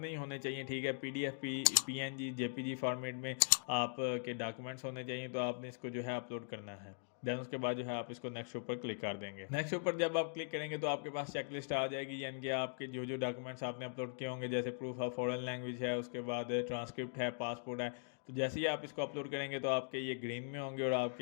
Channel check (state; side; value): silent; right; digital silence